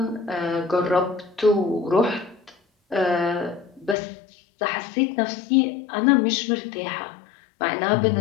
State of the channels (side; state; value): right; drops out; at 4.0 s